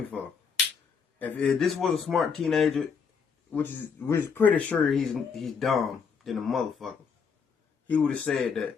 for? If this was a smart teenager, which is pretty sure he's dumb than a motherfucker, he would have said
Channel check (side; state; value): right; quieter; 6.0 dB